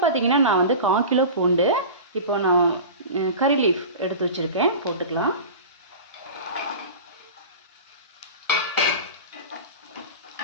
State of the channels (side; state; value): both; inverted; correlation -0.32